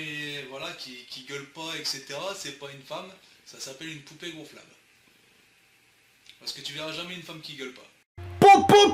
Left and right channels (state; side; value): identical; both; correlation 1.00